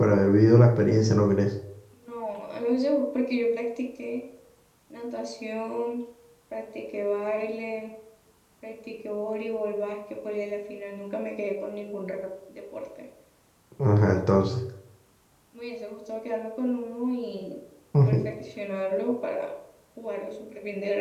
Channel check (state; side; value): identical; both; correlation 1.00